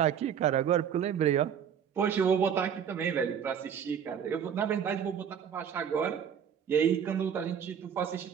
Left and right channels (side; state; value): left; quieter; 8.2 dB